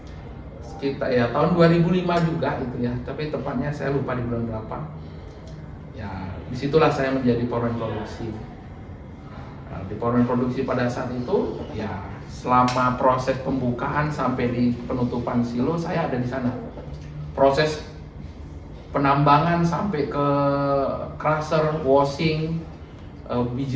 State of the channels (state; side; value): identical; both; correlation 1.00